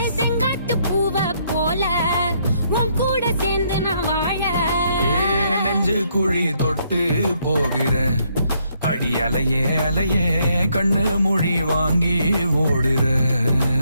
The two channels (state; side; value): inverted; both; correlation -0.72